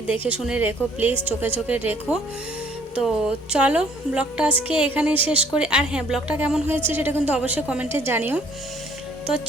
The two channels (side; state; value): both; normal; correlation 0.60